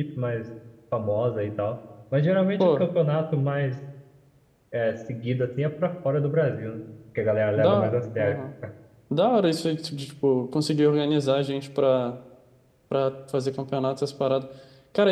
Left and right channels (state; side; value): identical; both; correlation 1.00